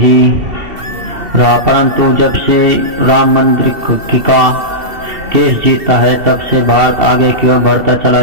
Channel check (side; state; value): left; late; 2.7 ms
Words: रहा, परंतु जब से राम मंदिर का केस जीता है, तब से भारत आगे की ओर बढ़ता चला